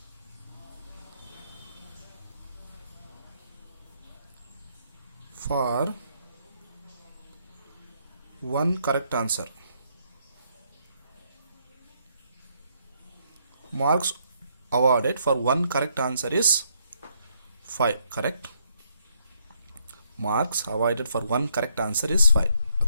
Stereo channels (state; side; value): inverted; both; correlation -0.73